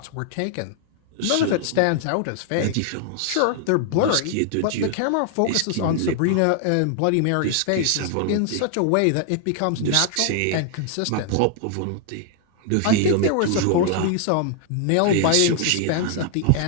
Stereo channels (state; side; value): different; both; correlation 0.00